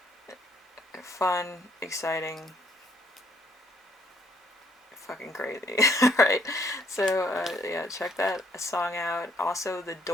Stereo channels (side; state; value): both; normal; correlation 0.67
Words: Fun, exciting, fucking crazy. Right, so yeah, check that song out. Also, The